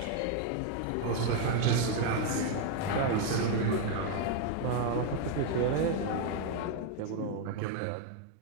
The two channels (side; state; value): both; different; correlation 0.00